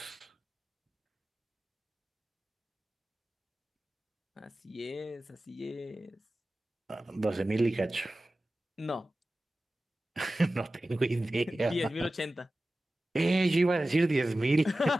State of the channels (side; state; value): both; normal; correlation 0.95